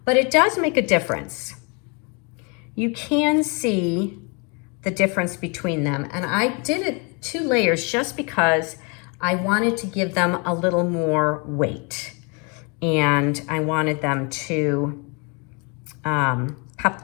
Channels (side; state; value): right; quieter; 32.9 dB